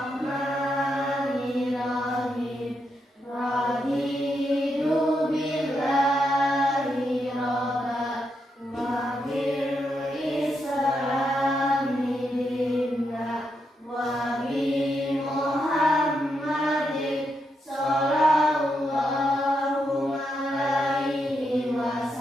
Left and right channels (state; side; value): normal; both; correlation 0.82